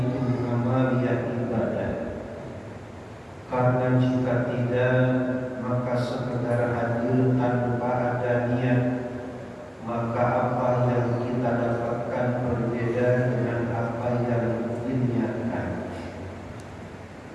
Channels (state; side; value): identical; both; correlation 1.00